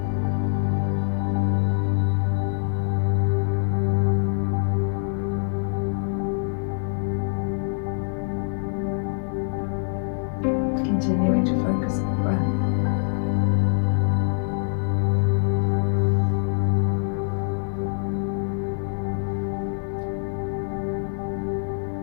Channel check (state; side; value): silent; right; digital silence